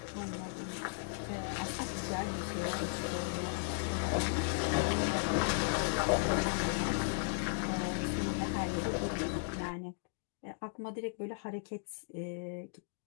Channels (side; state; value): right; silent; digital silence